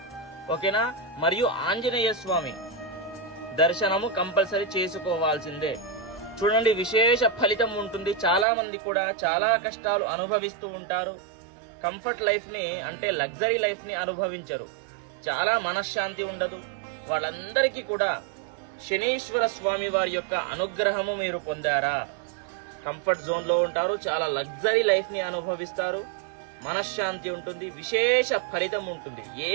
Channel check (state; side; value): drops out; left; at 8.5 s